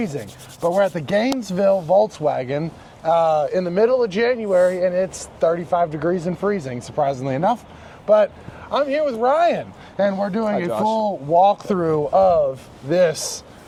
But we're at the Gainesville Volkswagen in the middle of January, and it's 35 degrees and freezing, surprisingly enough. But I'm here with Ryan, and we're doing a full walkthrough of this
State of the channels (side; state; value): both; identical; correlation 1.00